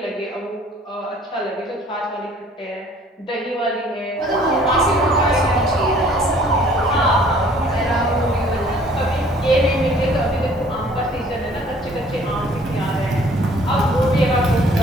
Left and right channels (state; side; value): normal; both; correlation 0.56